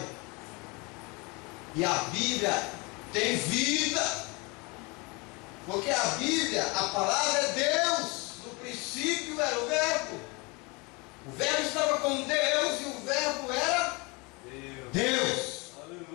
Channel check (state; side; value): quieter; right; 27.7 dB